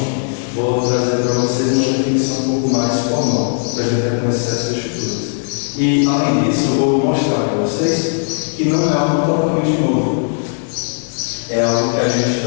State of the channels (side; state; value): right; silent; digital silence